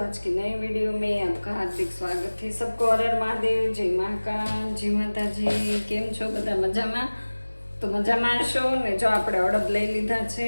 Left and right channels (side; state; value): both; inverted; correlation -1.00